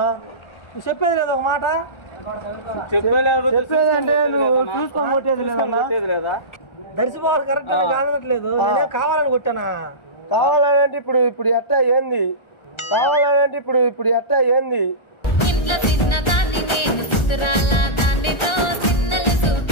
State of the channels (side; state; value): right; late; 1.4 ms